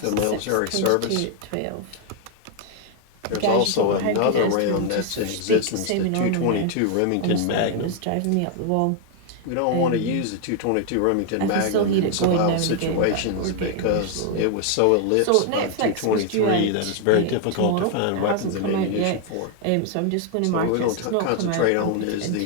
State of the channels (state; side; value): different; both; correlation 0.00